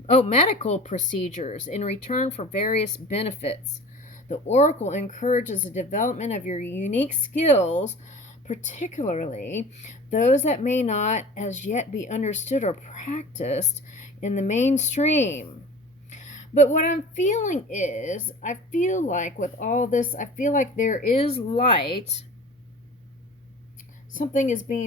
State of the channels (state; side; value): normal; both; correlation 0.40